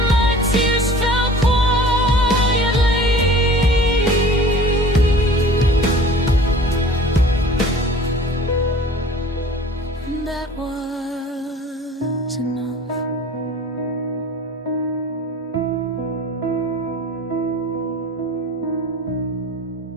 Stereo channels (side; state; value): both; normal; correlation 0.45